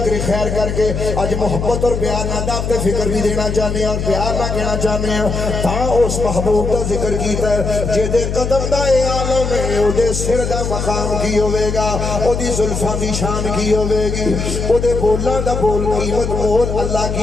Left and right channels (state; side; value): noise; left; hum, 3 dB below the sound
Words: خیر کر کے آج محبت اور پیار نہ دعوت فکر بھی دینا چاہنے ہیں اور پیار نہ کہنا چاہنے ہیں تاں اس محبوب دا ذکر کیتا ہے جے دے قدم دا اے عالم ہے او دے سر دا مقام کی ہوئے گا او دی زلفاں دی شان کی ہوئے گی او دے بولاں دا بول قیمت مول اللہ